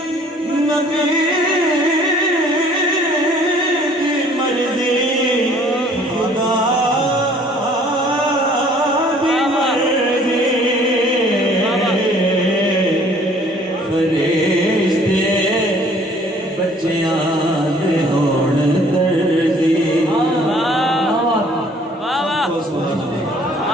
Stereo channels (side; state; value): both; normal; correlation 0.56